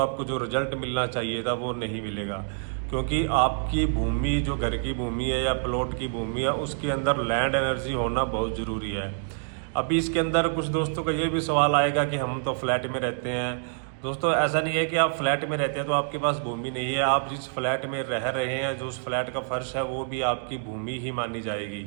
आपको जो रिजल्ट मिलना चाहिए था वो नहीं मिलेगा। क्योंकि आपकी भूमि, जो घर की भूमि है या प्लॉट की भूमि है, उसके अंदर लैंड एनर्जी होना बहुत ज़रूरी है। अभी इसके अंदर कुछ दोस्तों का ये भी सवाल आएगा कि हम तो फ्लैट में रहते हैं। दोस्तों, ऐसा नहीं है कि आप फ्लैट में रहते हैं तो आपके पास भूमि नहीं है। आप जिस फ्लैट में रह रहे हैं, जो उस फ्लैट का फर्श है, वो भी आपकी भूमि ही मानी जाएगी।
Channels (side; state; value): left; silent; digital silence